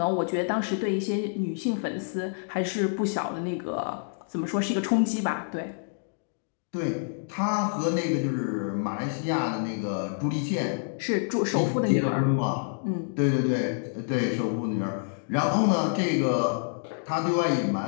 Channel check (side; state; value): right; silent; digital silence